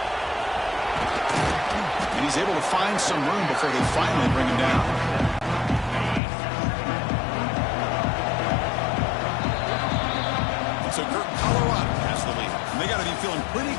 And he's able to find some room before they finally bring him down. So Colorado has the lead. And they got to be feeling pretty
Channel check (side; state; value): right; drops out; at 6.2 s